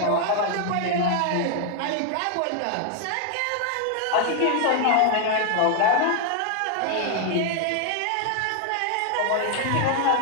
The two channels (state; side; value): different; both; correlation 0.00